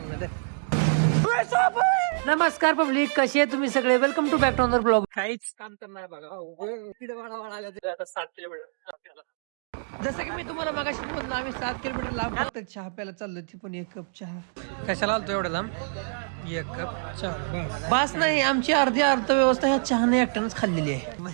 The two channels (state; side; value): silent; left; digital silence